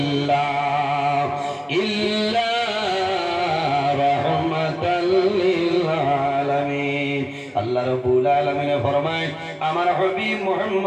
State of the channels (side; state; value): both; identical; correlation 1.00